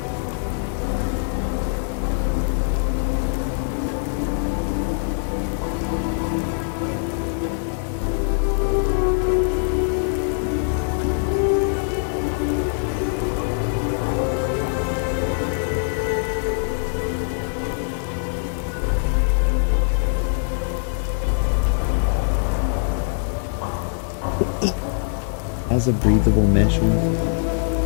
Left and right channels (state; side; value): silent; right; digital silence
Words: Has a breathable mesh one,